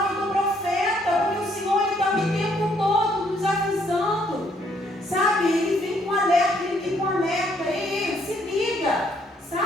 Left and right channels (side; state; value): both; normal; correlation 0.68